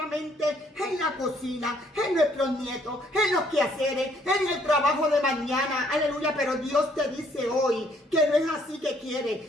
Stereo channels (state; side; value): normal; both; correlation 0.65